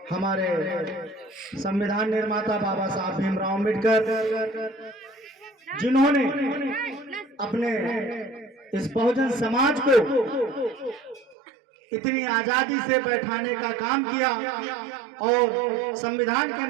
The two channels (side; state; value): left; drops out; at 11.4 s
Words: हमारे संविधान निर्माता बाबा साहब भीमराव अम्बेडकर, जिन्होंने अपने इस बहुजन समाज को इतनी आजादी से बैठाने का काम किया और संविधान के